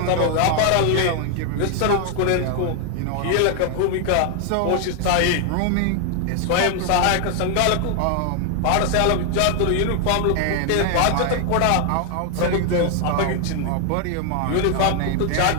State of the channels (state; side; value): different; both; correlation 0.00